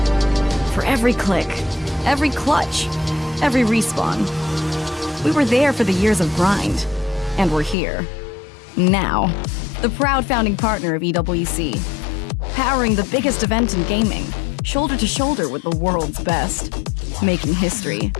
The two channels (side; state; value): right; drops out; at 7.8 s